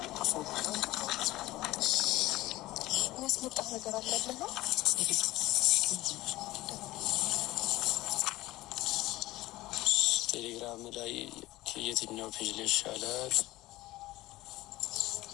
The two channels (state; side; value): quieter; right; 17.7 dB